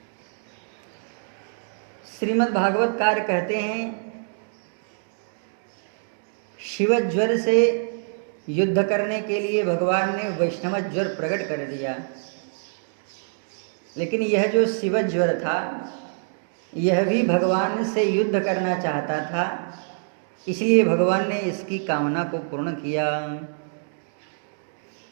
श्रीमद् भागवतकार कहते हैं, शिव ज्वर से युद्ध करने के लिए भगवान ने वैष्णव ज्वर प्रकट कर दिया, लेकिन यह जो शिव ज्वर था यह भी भगवान से युद्ध करना चाहता था, इसलिए भगवान ने इसकी कामना को पूर्ण किया।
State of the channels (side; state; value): left; silent; digital silence